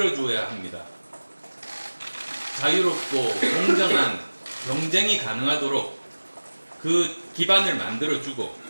합니다. 자유롭고 공정한 경쟁이 가능하도록 그 기반을 만들어주고,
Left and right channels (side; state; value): both; inverted; correlation -1.00